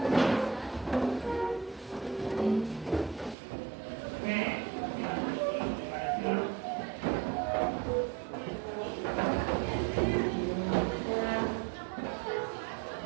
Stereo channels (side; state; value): left; drops out; at 3.4 s